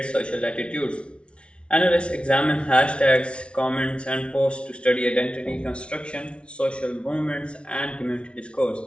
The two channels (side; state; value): right; late; 0.059 ms